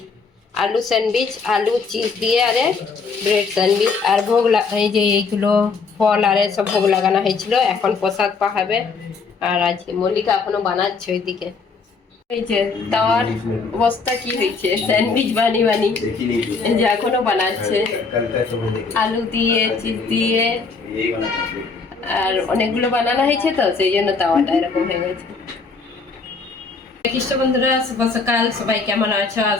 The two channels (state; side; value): quieter; right; 4.7 dB